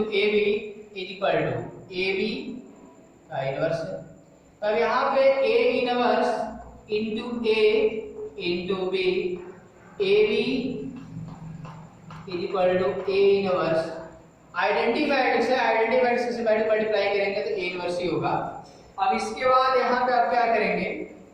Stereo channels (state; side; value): identical; both; correlation 1.00